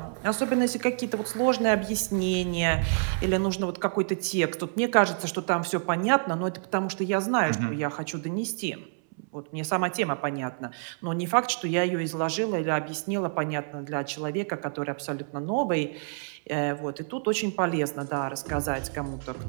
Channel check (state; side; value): silent; left; 59 dB below the other